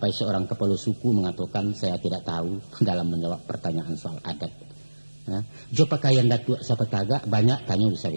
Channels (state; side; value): inverted; both; correlation -1.00